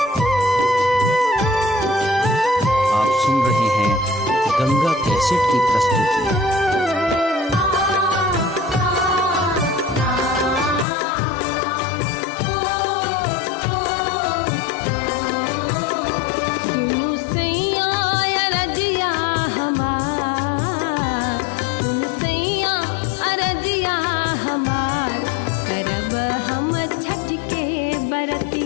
आप सुन रहे हैं गंगा कैसेट की प्रस्तुति। सुनु सैया अरजिया हमार, सुनु सैया अरजिया हमार, करब हम छठ के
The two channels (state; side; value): drops out; right; at 10.9 s